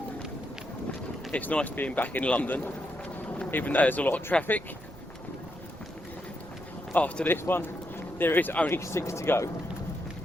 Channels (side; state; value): right; noise; rumble, 20 dB below the sound